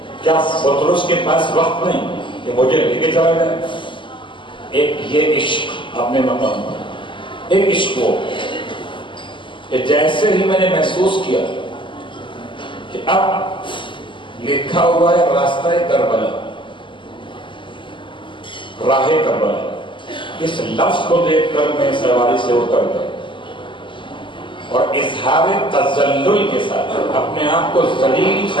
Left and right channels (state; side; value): late; right; 0.24 ms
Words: کیا فطرس کے پاس وقت نہیں کہ مجھے لے کے چلا جائے؟ ایک یہ عشق اپنے مقام پر، ایک عشق ہو کہ جیسے ہی میں نے محسوس کیا کہ اب لکھا ہوا ہے راستہ کربلا، راہ کربلا، اس لفظ کو دیکھ کر میں سواری سے اتر گیا اور اظہار تذلل کے ساتھ اپنے آپ کو ذلیل